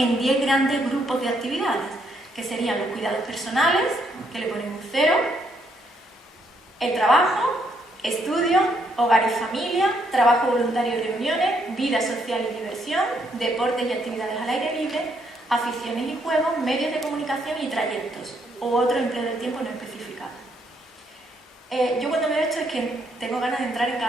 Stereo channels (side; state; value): both; normal; correlation 0.73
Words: 10 grandes grupos de actividades, que serían los cuidados personales, que le ponemos 0, el trabajo, estudio, hogar y familia, trabajo voluntario y reuniones, vida social y diversión, deportes y actividades al aire libre, aficiones y juegos, medios de comunicación y trayectos, o otro empleo del tiempo no especificado. Yo cuando veo esto es que tengo ganas de entrar en